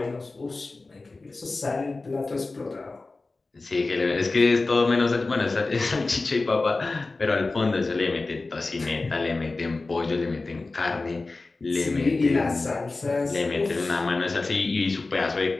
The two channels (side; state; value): right; quieter; 3.5 dB